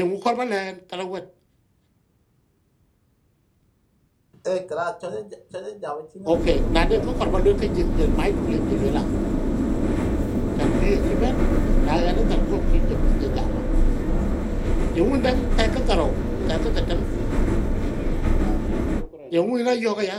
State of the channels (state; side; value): identical; both; correlation 1.00